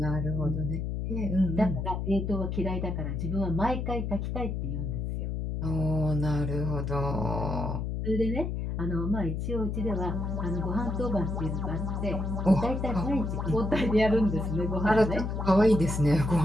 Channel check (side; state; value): left; noise; hum, 2 dB below the sound